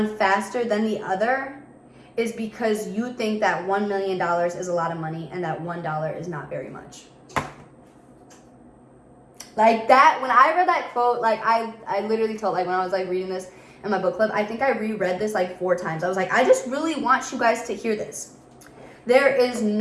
faster than the other is because you think that $1 million is a lot of money and that $1 is not very much. Like that, when I read that quote, like I literally told, like when I was like reading this in my book club, I think I reread this like 4 times. I was like, I just really want you guys to hear this. There is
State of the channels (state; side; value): identical; both; correlation 1.00